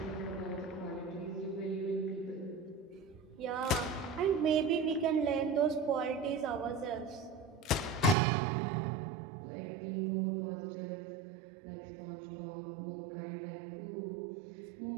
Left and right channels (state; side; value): drops out; left; at 8.2 s